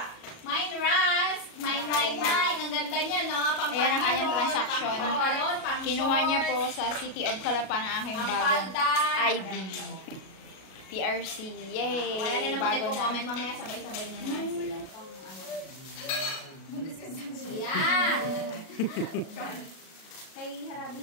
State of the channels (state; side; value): late; right; 37 ms